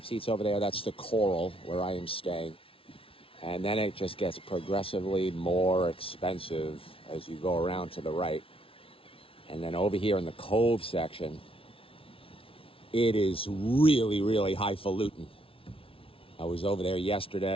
seats over there. That's the Coral where I am staying. And then it just gets progressively more expensive as you go around to the right. And then over here in the Cove section, it is really, really highfalutin. I was over there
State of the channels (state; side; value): late; right; 0.26 ms